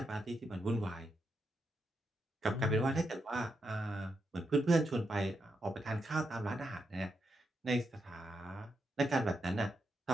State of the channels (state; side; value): normal; both; correlation 0.83